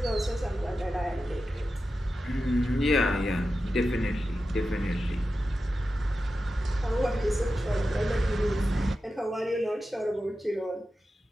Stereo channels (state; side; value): normal; both; correlation 0.91